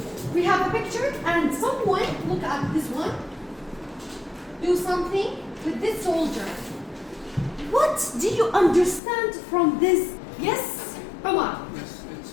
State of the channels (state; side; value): drops out; right; at 9.0 s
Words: We have a picture, and someone, look at this one, do something with this soldier. What do you understand from this? Yes, Omar? Yes, it's